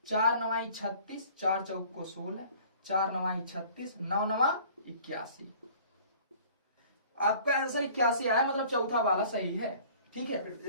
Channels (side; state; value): both; inverted; correlation -0.51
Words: 4 9 36, 4 चौक को 16, 4 9 36, 9 9 81। आपका आंसर 81 आया, मतलब चौथा वाला सही है। ठीक है, फिर